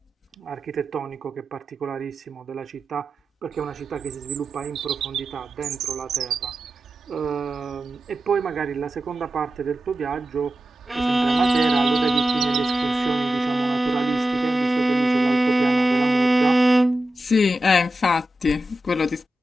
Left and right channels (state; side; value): normal; both; correlation 0.92